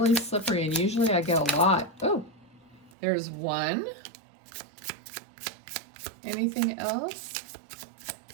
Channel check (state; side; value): drops out; left; at 2.9 s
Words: slippery and usually I get a lot. Oh, there's one. Anything else?